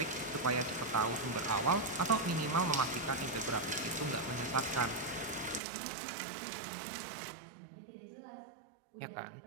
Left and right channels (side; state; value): left; drops out; at 5.6 s